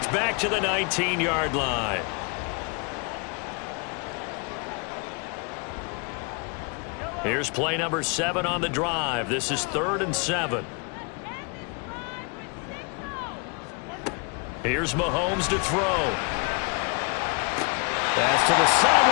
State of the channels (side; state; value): right; quieter; 33.3 dB